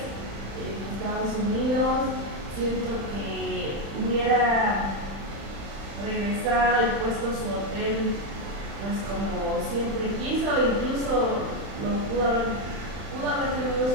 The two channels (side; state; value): left; late; 35 ms